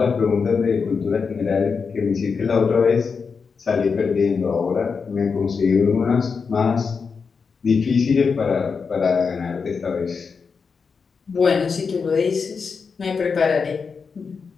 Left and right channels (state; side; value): quieter; right; 5.4 dB